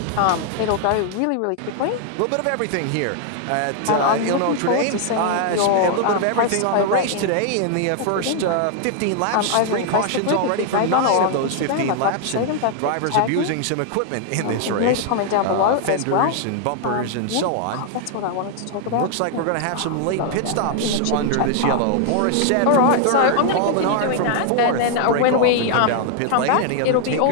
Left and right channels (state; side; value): different; both; correlation 0.00